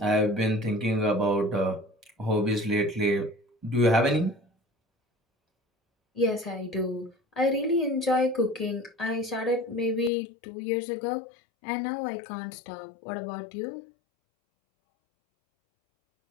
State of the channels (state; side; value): drops out; right; at 10.1 s